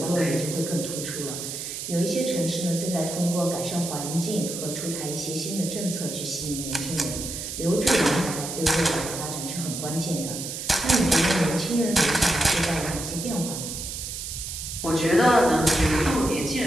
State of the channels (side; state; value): right; noise; hiss, 7 dB below the sound